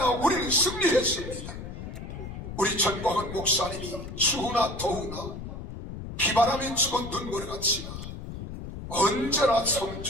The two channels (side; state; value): left; noise; rumble, 9 dB below the sound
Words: 우리는 승리했습니다. 우리 전광훈 목사님이 추우나 더우나 비바람이 치고 눈보라가 치나 언제나